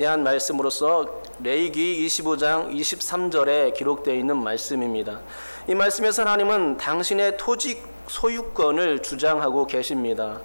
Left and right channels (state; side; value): inverted; both; correlation -1.00